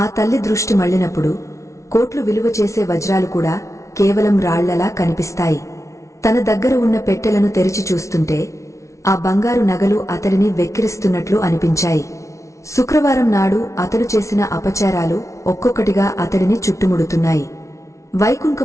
ఆ తల్లి దృష్టి మళ్లినప్పుడు కోట్లు విలువ చేసే వజ్రాలు కూడా కేవలం రాళ్లలా కనిపిస్తాయి. తన దగ్గర ఉన్న పెట్టెలను తెరిచి చూస్తుంటే ఆ బంగారు నగలు అతడిని వెక్కిరిస్తున్నట్లు అనిపించాయి. శుక్రవారం నాడు అతడు చేసిన అపచారాలు ఒక్కొక్కటిగా అతడిని చుట్టుముడుతున్నాయి.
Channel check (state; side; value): late; right; 0.14 ms